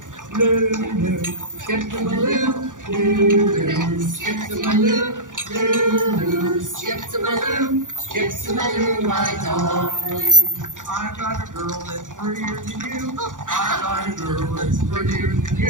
Lulu, skip the Maloo. Lulu, skip the Maloo. Lulu, skip the Maloo. Skip the Maloo, my darling. I got a girl that's prettier than you. I got a girl that's prettier than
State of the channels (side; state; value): left; late; 0.87 ms